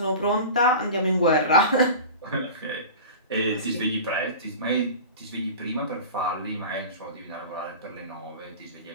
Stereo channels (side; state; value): both; inverted; correlation -0.34